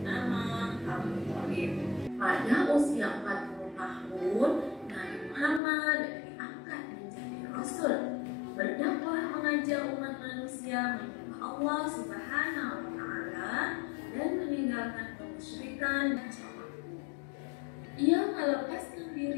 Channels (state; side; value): drops out; right; at 5.6 s